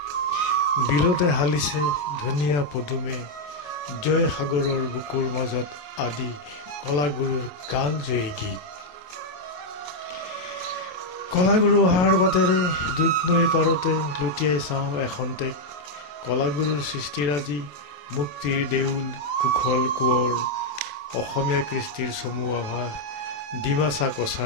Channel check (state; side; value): late; right; 27 ms